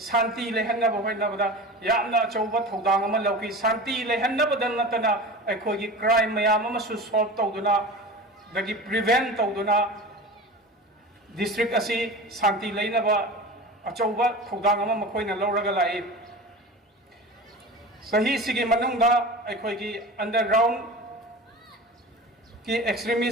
शांति लेहन्नब होइनबदा यामना अचौबा थौदांग अमा लौकी शांति लेहन्नबदा नतना अखोई क्राइम मैम अमसु सॉल्व तौदुना दगी प्रिवेंट तौदुना डिस्ट्रिक्ट असि शांति लेनबा अचौबा थौदांग अमा मखोइना लौरगा लाई सही सिगी मनुंगा अखोई अंडरग्राउंड की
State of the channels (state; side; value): normal; both; correlation 0.33